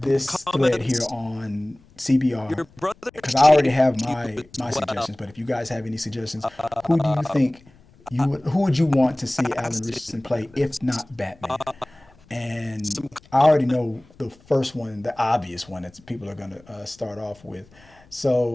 thread here on CBR because I already have my suggestions. But if you guys have any suggestions, who do you think who would you want to see Alan Ritchson play if not Batman? And I already know the first one, the obvious one that people are going to start off with.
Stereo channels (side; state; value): left; noise; rumble, 28 dB below the sound